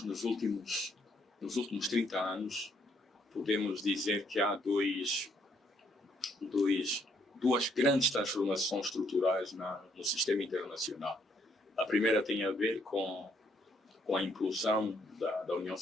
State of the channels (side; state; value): both; normal; correlation 0.69